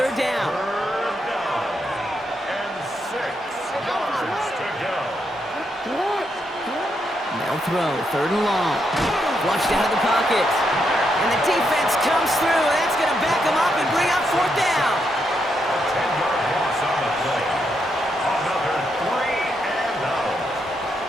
down. 3rd down and 6 yards to go. They'll throw, 3rd and long. Flushed out of the pocket. And the defense comes through. That's going to back them up and bring up 4th down. A 10-yard loss on the play. Another 3 and out.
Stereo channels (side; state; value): both; normal; correlation 0.80